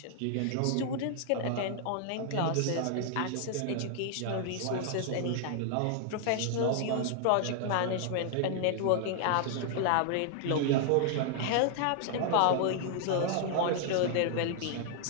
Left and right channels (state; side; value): different; both; correlation 0.00